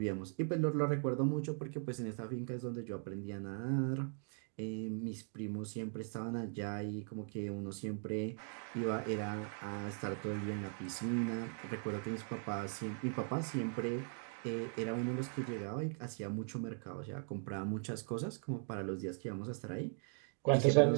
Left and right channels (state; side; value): silent; left; 51 dB below the other